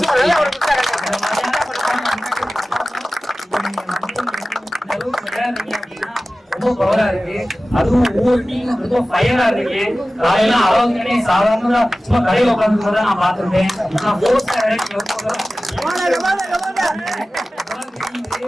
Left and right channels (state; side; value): normal; both; correlation 0.96